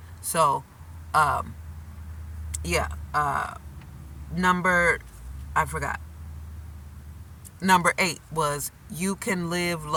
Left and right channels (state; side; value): identical; both; correlation 1.00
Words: So, um, yeah, number, I forgot. Number 8 was you can live